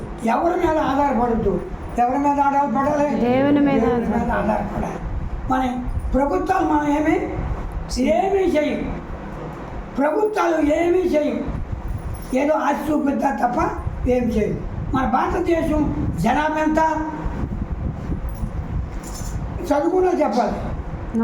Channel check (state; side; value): identical; both; correlation 1.00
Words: ఎవరి మీద ఆధారపడద్దు. ఎవరి మీద ఆధారపడాలి? దేవుని మీద ఆధారపడాలి. మన ప్రభుత్వాలు మనం ఏమీ చేయం. ప్రభుత్వాలు ఏమీ చేయం. ఏదో ఆశ చూపిద్దా తప్ప ఏం చేయం. మన భారతదేశం జనాభా ఎంత? చదువుకున్నా చెప్పాలి.